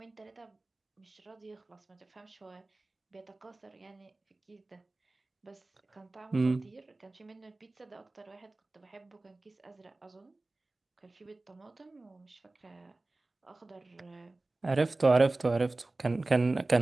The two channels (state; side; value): quieter; left; 3.0 dB